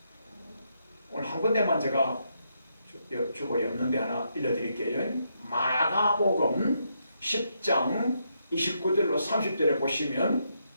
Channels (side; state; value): both; inverted; correlation -0.79